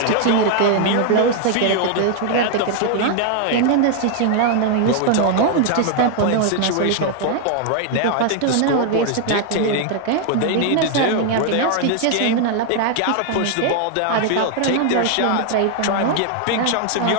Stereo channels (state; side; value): different; both; correlation 0.00